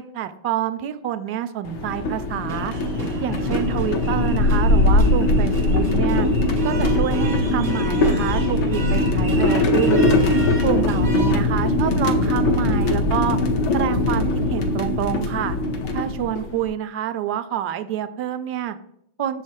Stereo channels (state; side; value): late; right; 6.6 ms